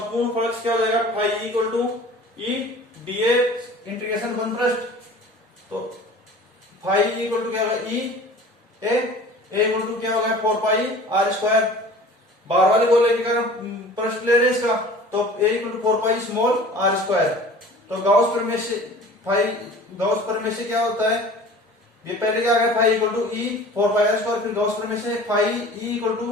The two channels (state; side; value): normal; both; correlation 0.43